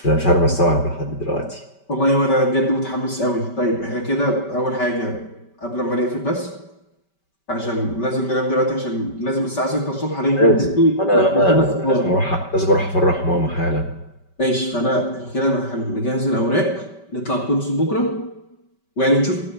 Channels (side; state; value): right; late; 5.2 ms